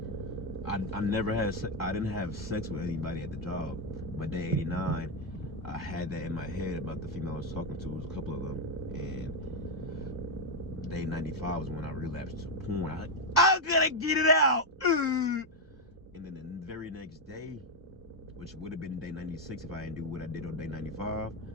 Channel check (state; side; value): normal; both; correlation 0.04